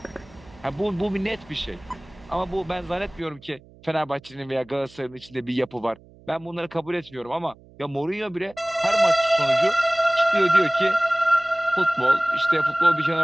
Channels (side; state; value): right; noise; hum, 25 dB below the sound